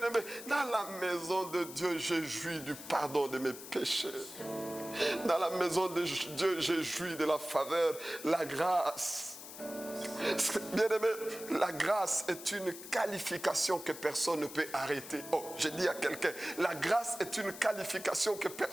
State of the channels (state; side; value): noise; left; hiss, 13 dB below the sound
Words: dans la maison de Dieu, j'ai joui du pardon de mes péchés. Dans la maison de Dieu, j'ai joui de la faveur, la grâce. Bien-aimé, la grâce est une qualification que personne ne peut arrêter. Oh, j'ai dit à quelqu'un, la grâce est une qualification que